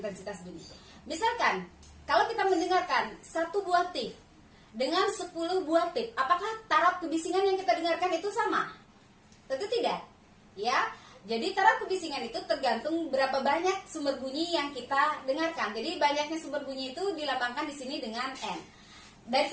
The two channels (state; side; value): identical; both; correlation 1.00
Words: bunyi. Misalkan, kalau kita mendengarkan 1 buah tip dengan 10 buah tip, apakah taraf kebisingan yang kita dengarkan itu sama? Tentu tidak. Ya. Jadi taraf kebisingan itu tergantung berapa banyak sumber bunyi yang kita dengarkan. Jadi banyaknya sumber bunyi itu dilambangkan di sini dengan N. Dari